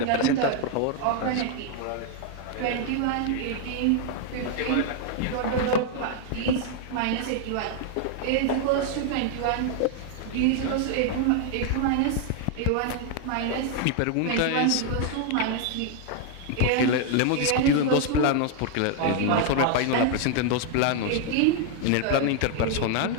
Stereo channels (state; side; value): different; both; correlation 0.00